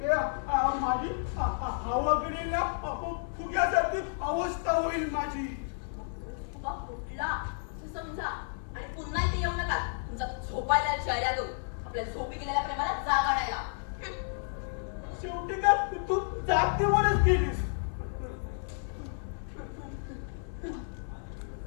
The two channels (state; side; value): silent; right; 57 dB below the other